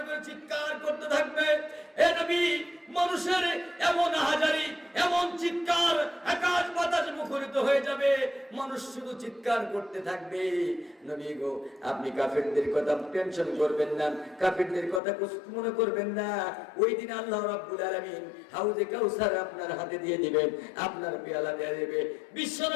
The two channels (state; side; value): drops out; right; at 15.0 s